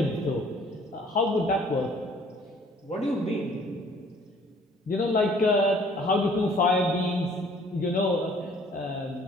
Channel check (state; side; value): normal; both; correlation 0.57